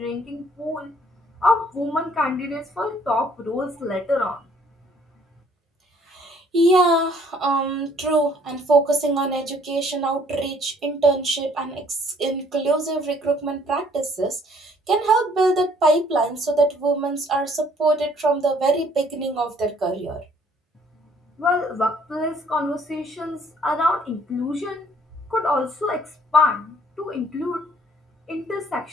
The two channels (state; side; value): normal; both; correlation 0.61